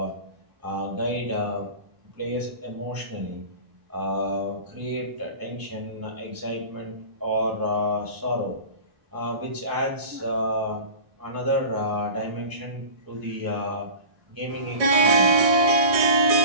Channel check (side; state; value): left; late; 1.6 ms